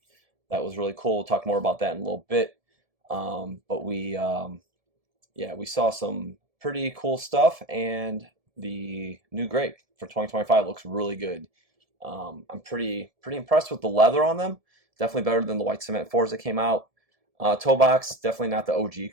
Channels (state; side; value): late; left; 1.7 ms